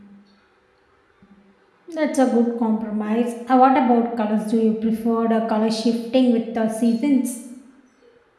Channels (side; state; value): both; identical; correlation 1.00